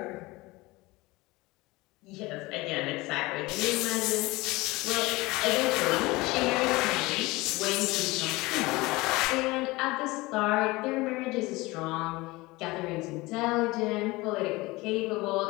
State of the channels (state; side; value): quieter; right; 21.6 dB